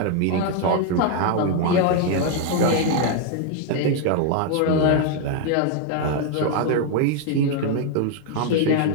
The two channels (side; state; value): both; different; correlation 0.00